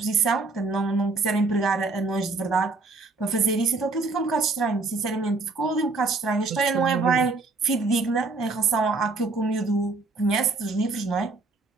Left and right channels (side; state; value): left; quieter; 3.7 dB